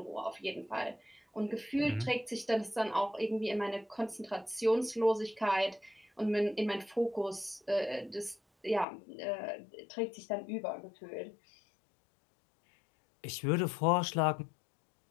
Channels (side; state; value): right; drops out; at 8.8 s